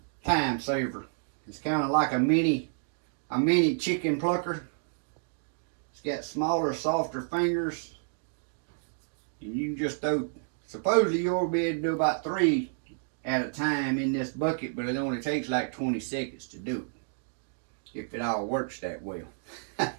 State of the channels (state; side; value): silent; left; digital silence